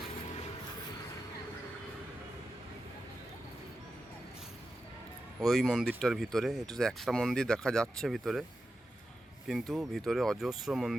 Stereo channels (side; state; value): both; normal; correlation 0.91